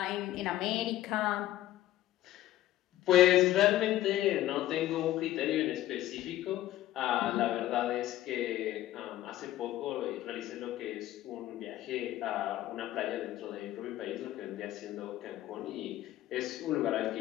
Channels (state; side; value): quieter; right; 14.2 dB